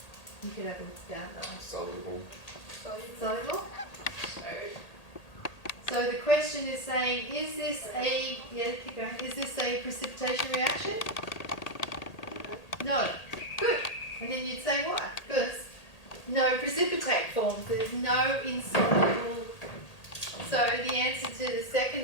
You could have it down though. Soluble. Soluble? So the question is saying, is this a, yeah, keep going, is this a precipitation reaction? No. Good. And then you'd say why? Because no precipitate forms. There's no insoluble. So the answer to the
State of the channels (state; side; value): late; right; 1.8 ms